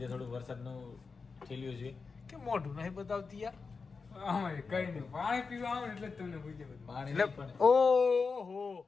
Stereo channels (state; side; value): quieter; right; 4.7 dB